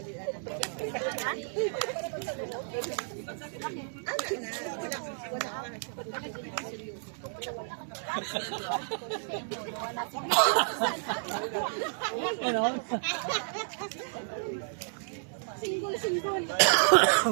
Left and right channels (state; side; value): silent; left; digital silence